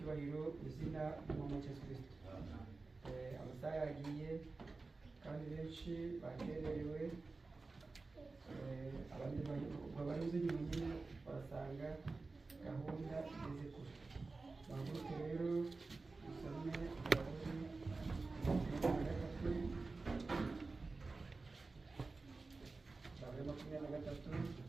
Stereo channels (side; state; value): left; quieter; 3.7 dB